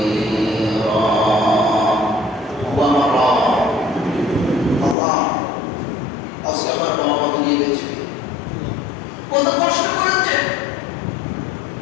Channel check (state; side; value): drops out; right; at 5.0 s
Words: আল্লাহ আজকে আমার বাবা মাকে নিয়ে গেছে, কত কষ্ট করেছে,